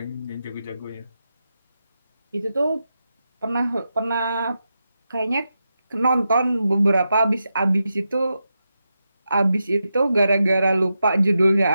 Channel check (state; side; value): inverted; both; correlation -0.88